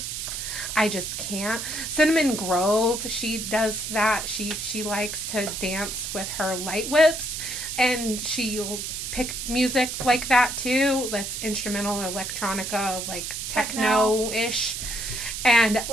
CinnamonGrove, she does that. She likes to dance with her light whips, and she'll pick music like that too. That's instrumental, electronica, like techno-ish. And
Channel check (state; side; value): noise; right; hiss, 5 dB below the sound